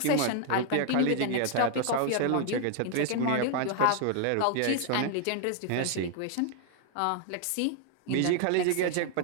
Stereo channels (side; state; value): both; different; correlation 0.00